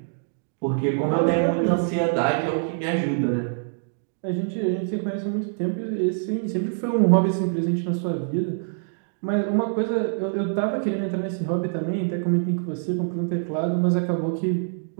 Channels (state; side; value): silent; left; digital silence